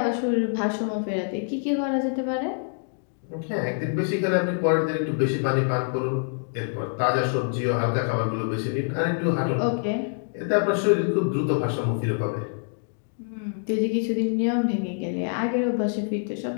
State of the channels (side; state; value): right; silent; digital silence